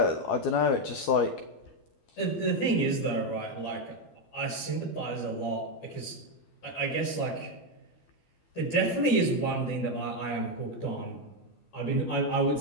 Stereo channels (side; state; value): right; late; 12 ms